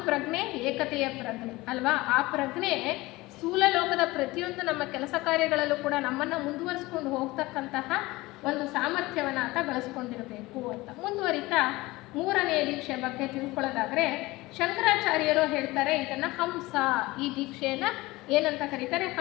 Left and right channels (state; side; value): quieter; right; 20.4 dB